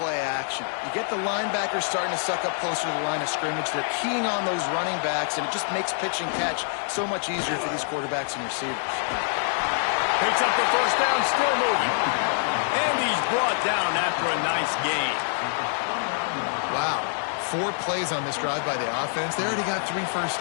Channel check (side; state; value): right; silent; 61 dB below the other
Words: action. You get the linebackers starting to suck up closer to the line of scrimmage. They're keying on those running backs, and it just makes pitch and catch so much easier for these quarterbacks and receivers. Picks up the first down, still moving. And he's brought down after a nice gain. Wow. 4 plays on this drive by the offense. They already got 3 first